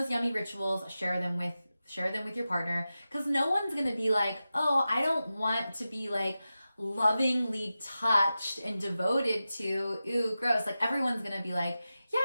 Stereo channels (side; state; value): both; inverted; correlation -0.93